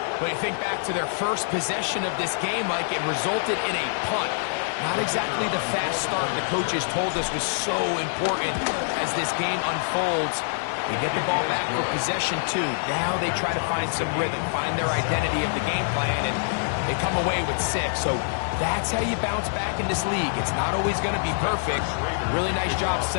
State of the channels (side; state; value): right; silent; digital silence